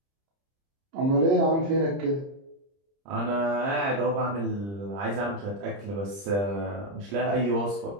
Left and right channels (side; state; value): left; late; 30 ms